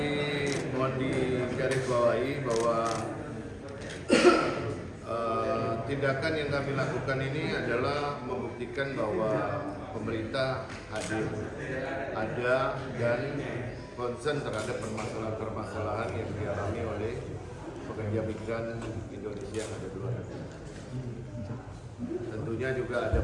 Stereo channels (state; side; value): identical; both; correlation 1.00